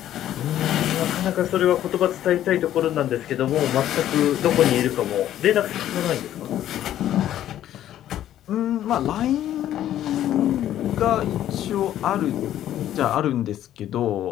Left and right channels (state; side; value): quieter; right; 12.0 dB